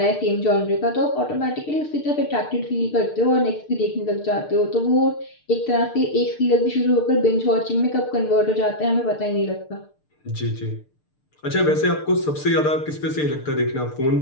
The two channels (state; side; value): late; right; 6.7 ms